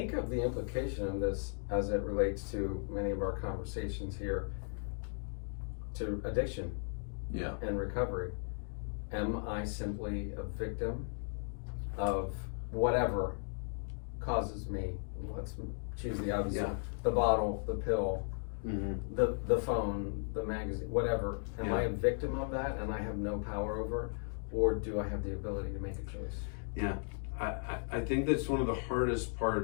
of the implication of this as it relates to many of our conversations here, to addiction Yeah. and recovery. Am I simply a victim of whatever causes me? Let's choose the obvious one. The bottle, the pill, the phone, the magazine, whatever. Am I a victim of that and I have no power over it? Or do I have the ability to make a choice? Yeah. I think that's one of the hardest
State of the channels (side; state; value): right; silent; 54 dB below the other